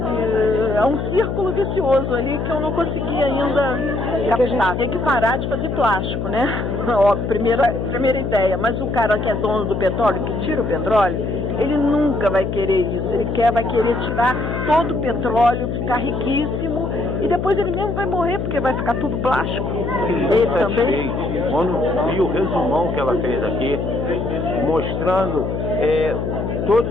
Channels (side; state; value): left; noise; hum, 2 dB below the sound